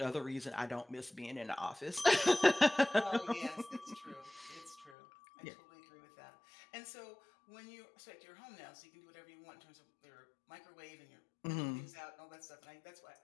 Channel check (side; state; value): right; drops out; at 5.0 s